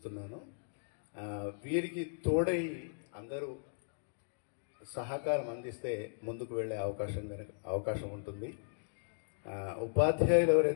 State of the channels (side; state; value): right; silent; digital silence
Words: వీరికి తోడై అందరూ సహకారం అందిస్తే ముందుకు వెళ్ళే అవకాశం ఉంటుంది. ఉపాధ్యాయులు